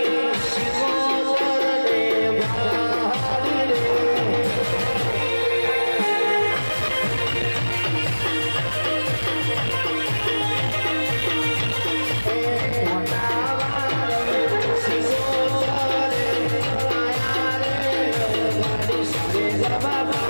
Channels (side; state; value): both; inverted; correlation -1.00